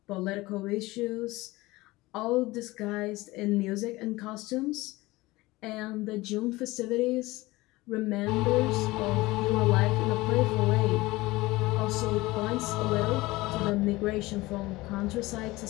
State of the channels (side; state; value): right; quieter; 20.3 dB